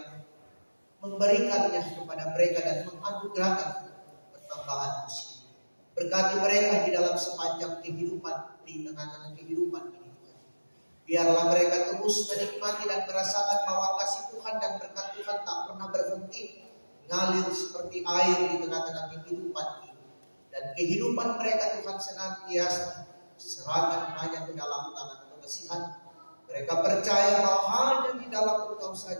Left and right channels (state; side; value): inverted; both; correlation -1.00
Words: memberikannya kepada mereka dan menganugerahkan pertambahan usia. Berkati mereka di dalam sepanjang kehidupan, di tengah-tengah kehidupan ini. Biarlah mereka terus menikmati dan merasakan bahwa kasih Tuhan dan berkat Tuhan tak pernah berhenti, ngalir seperti air di tengah-tengah kehidupan ini. Dan kehidupan mereka Tuhan senantiasa serahkan hanya ke dalam tangan pengasihan. Mereka percaya bahwa hanya di dalam Engkau